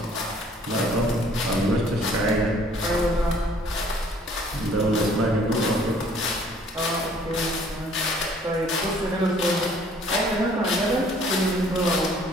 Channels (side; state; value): both; normal; correlation 0.57